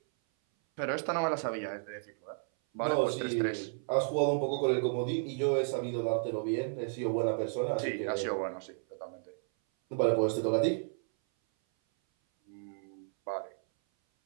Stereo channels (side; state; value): left; silent; 56 dB below the other